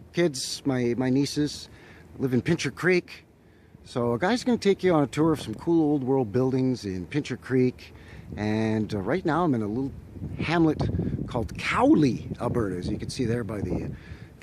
kids, my nieces, live in Pincher Creek. So a guy's going to take you on a tour of some cool old world buildings in Pincher Creek. And right now I'm in a little hamlet called Cowley, Alberta, as you can see there by the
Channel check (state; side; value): identical; both; correlation 1.00